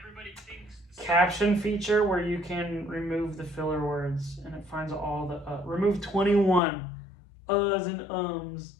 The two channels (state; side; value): drops out; right; at 6.6 s